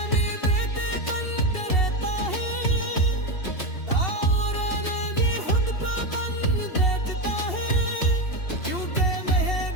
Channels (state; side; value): late; right; 2.7 ms